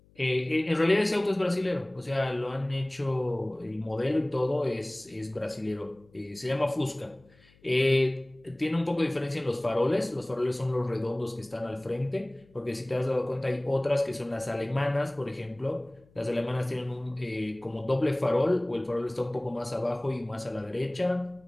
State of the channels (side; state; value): left; noise; hum, 29 dB below the sound